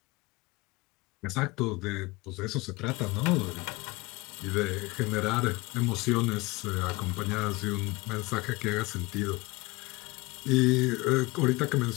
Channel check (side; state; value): right; quieter; 23.0 dB